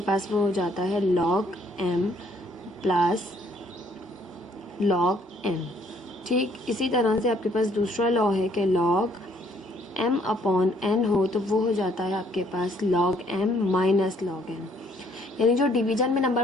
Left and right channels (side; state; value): both; normal; correlation 0.65